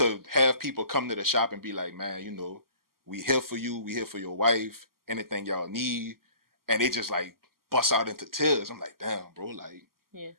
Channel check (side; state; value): left; late; 0.92 ms